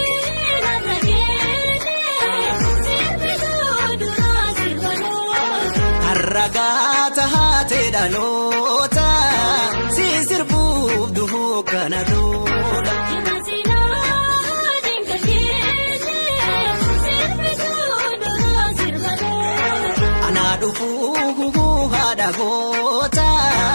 Ragata haate dhaloota si sirbuuf duhuu kana dura. Anaa dhufuu haadha goota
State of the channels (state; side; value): inverted; both; correlation -1.00